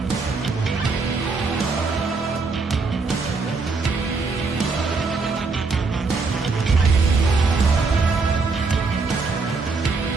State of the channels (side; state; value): left; quieter; 4.2 dB